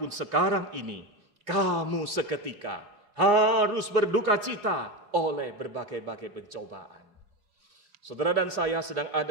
sekarang ini kamu seketika harus berduka cita oleh berbagai-bagai pencobaan. Saudara dan saya sedang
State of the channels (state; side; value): late; left; 4.8 ms